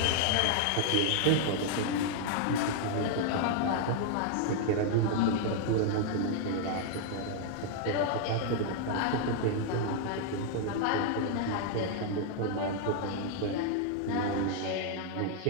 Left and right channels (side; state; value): both; different; correlation 0.00